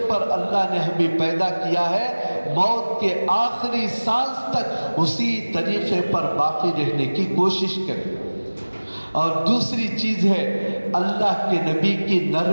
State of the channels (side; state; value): both; inverted; correlation -1.00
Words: پر اللہ نے ہمیں پیدا کیا ہے موت کے آخری سانس تک اسی طریقے پر باقی رہنے کی کوشش کریں۔ اور دوسری چیز ہے اللہ کے نبی کی